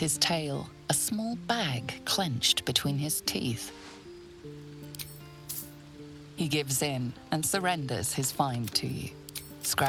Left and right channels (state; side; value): identical; both; correlation 1.00